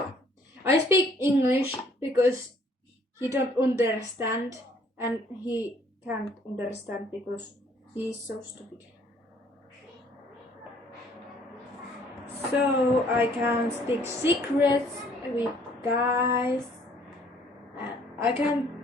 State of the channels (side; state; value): both; normal; correlation 0.60